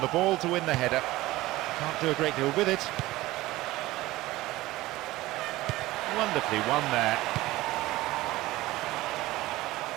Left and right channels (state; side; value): quieter; left; 18.0 dB